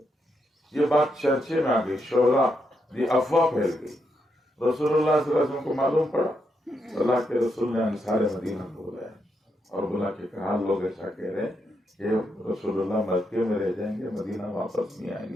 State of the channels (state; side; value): normal; both; correlation 0.81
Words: یہ بات چرچے میں آ گئی، شعلہ یہ افواہ پھیل گئی. رسول اللہ صلی اللہ علیہ وسلم کو معلوم پڑا. اللہ کے رسول نے انصار مدینہ کو بلایا اور بلا کے کہا لوگ ایسا کہہ رہے ہیں کہ رسول اللہ مکے میں رہ جائیں گے، مدینہ واپس نہیں آئیں